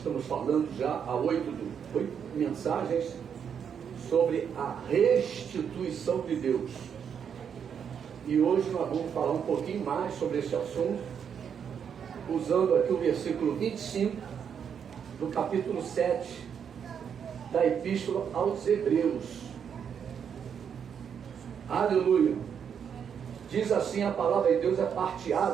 estamos falando já há 8 mensagens sobre a restituição de Deus. E hoje nós vamos falar um pouquinho mais sobre esse assunto, usando aqui o versículo 25 do capítulo 7 da Epístola aos Hebreus. Aleluia! Diz assim a palavra de Deus, é parte A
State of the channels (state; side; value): quieter; left; 7.6 dB